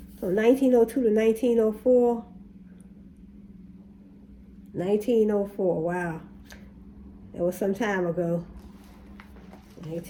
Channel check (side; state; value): both; identical; correlation 1.00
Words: So 1902 to 1904. 1904, wow. It was some time ago.